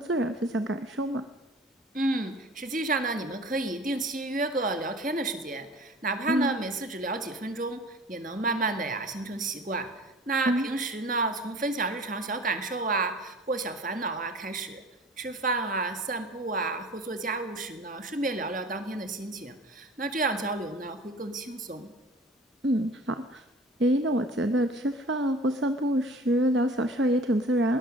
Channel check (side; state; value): both; normal; correlation 0.43